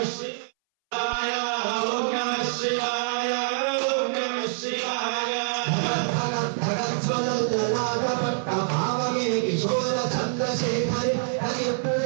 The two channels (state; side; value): silent; left; 61 dB below the other